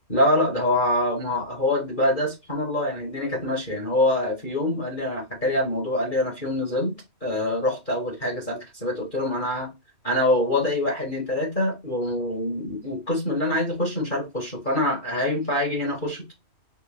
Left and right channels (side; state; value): right; late; 2.4 ms